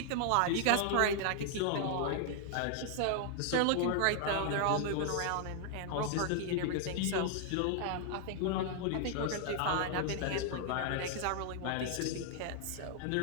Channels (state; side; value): different; both; correlation 0.00